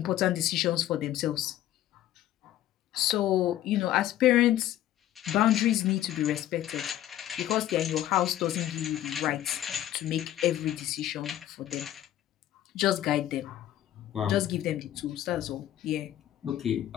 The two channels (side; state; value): right; quieter; 12.9 dB